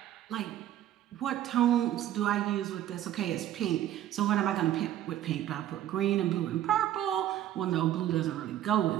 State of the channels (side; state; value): left; quieter; 12.2 dB